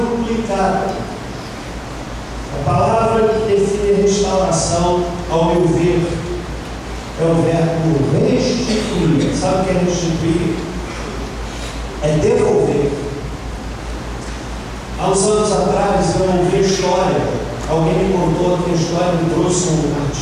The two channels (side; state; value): both; identical; correlation 1.00